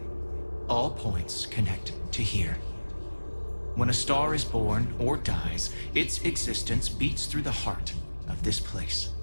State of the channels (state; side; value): inverted; both; correlation -1.00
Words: All points connect to here. When a star is born or dies, its existence beats through the heart of this place.